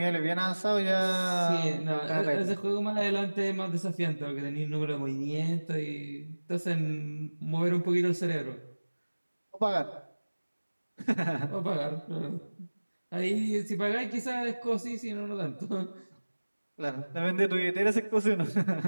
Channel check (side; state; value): both; inverted; correlation -1.00